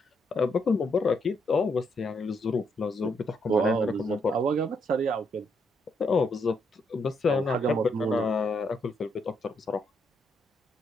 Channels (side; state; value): both; normal; correlation 0.76